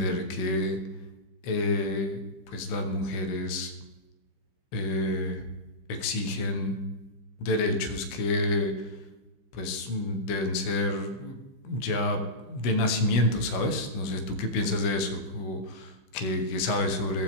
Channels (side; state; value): right; late; 16 ms